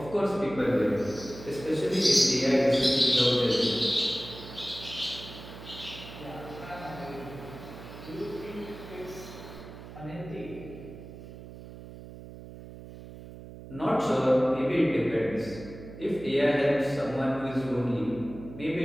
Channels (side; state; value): right; noise; hum, 14 dB below the sound